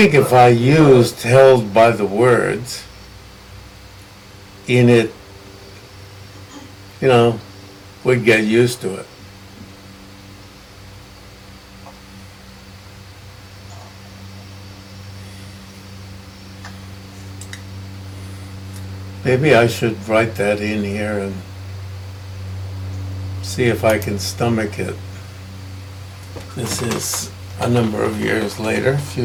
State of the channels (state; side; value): identical; both; correlation 1.00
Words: if I used held by the words in it, we'd get used to it. Maybe I should write that in here and see if I can stomach it. This is a number of years later, a